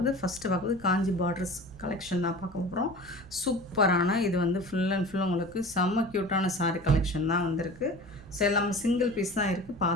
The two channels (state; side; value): noise; right; rumble, 22 dB below the sound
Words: ஃபஸ்ட்டு பார்க்குறது காஞ்சி பார்டர்ஸ் கலெக்ஷன் தான் பார்க்க போகிறோம். சூப்பரான இது வந்து ஃபுல் அண்ட் ஃபுல் உங்களுக்கு செம்ம க்யூட்டான சாரீ கலெக்ஷன் தான் வந்திருக்கு. ஸோ எல்லாமே சிங்கிள் பீஸ் தான் இருக்குது.